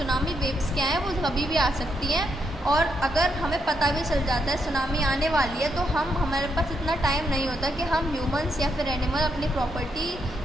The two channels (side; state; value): both; normal; correlation 0.79